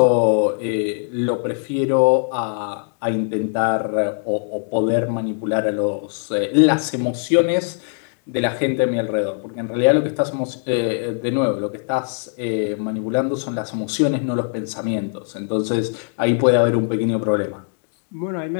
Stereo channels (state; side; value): silent; right; 65 dB below the other